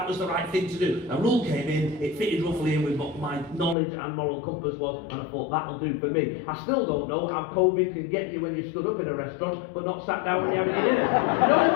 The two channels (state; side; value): drops out; right; at 3.8 s